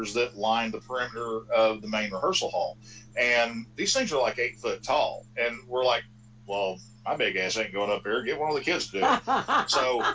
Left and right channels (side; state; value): both; identical; correlation 1.00